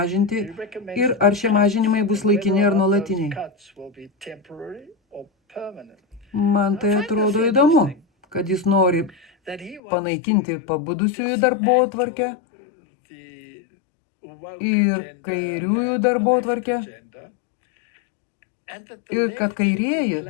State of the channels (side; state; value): right; drops out; at 9.8 s